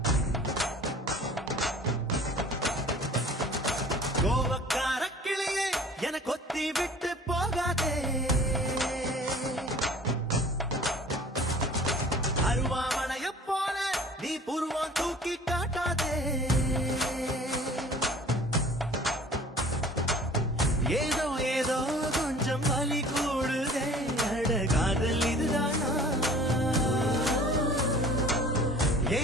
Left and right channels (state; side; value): normal; both; correlation 0.47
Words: கோவக்கார கிளியே என கொத்தி விட்டு போகாதே அருவாமனைய போல நீ புருவான் தூக்கி காட்டாதே ஏதோ ஏதோ கொஞ்சம் வலி கூடுதே அட காதல் இதுதானா